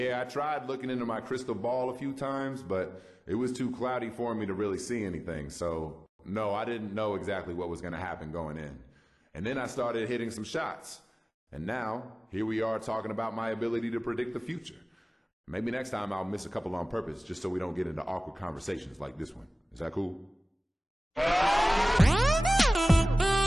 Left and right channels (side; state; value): both; normal; correlation 0.98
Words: I tried looking into my crystal ball a few times, but it was too cloudy for me to really see anything. So, no, I didn't know exactly what was going to happen going in. And then I started hitting some shots. And now, here we are talking about my ability to predict the future. Maybe next time I'll miss a couple on purpose just so we don't get into awkward conversations like this one. Is that cool?